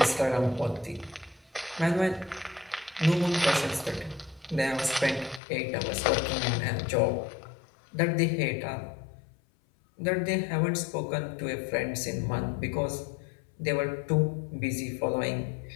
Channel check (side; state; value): right; drops out; at 5.4 s